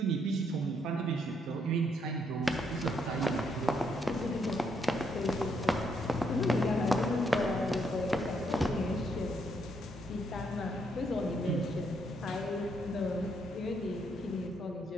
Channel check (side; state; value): both; normal; correlation 0.74